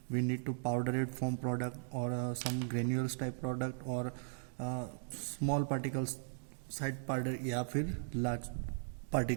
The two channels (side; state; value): left; silent; digital silence